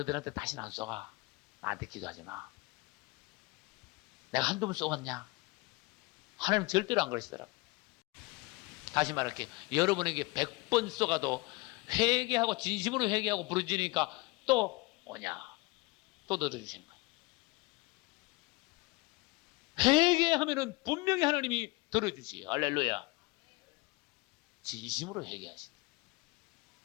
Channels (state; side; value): quieter; right; 24.0 dB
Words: 다시는 안 쏘가. 나한테 기도하지 마. 내가 한두 번 쏘았냐? 하나님 절대로 안 그러시더라. 다시 말할게. 여러분에게 100번 쏘가도 회개하고 진심으로 회개하고 부르짖으니까 또 오냐? 또 들어주신 거예요. 회개하면은 분명히 하나님이 들어주시요. 할렐루야. 진심으로 회개하신다.